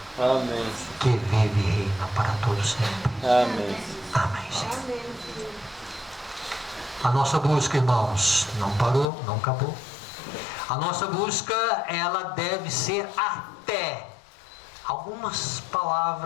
Amém. que vive e reina para todos sempre. Amém. Amém, Senhor. A nossa busca, irmãos, não parou, não acabou. A nossa busca, ela deve ser até. Algumas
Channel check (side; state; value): right; drops out; at 9.1 s